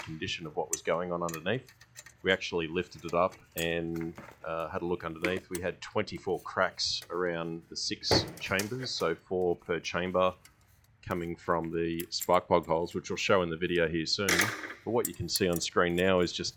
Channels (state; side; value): identical; both; correlation 1.00